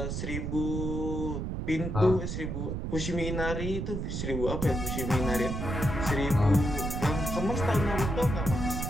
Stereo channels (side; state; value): right; noise; rumble, 3 dB below the sound